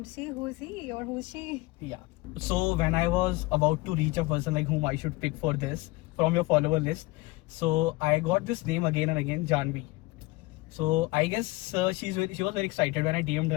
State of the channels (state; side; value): quieter; right; 22.2 dB